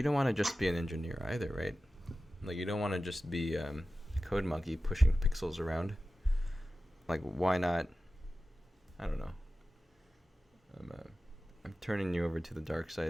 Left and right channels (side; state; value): both; normal; correlation 0.94